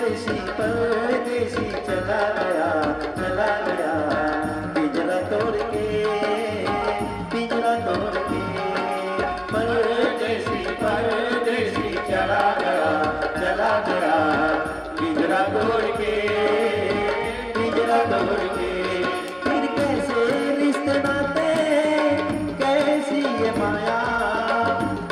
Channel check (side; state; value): both; identical; correlation 1.00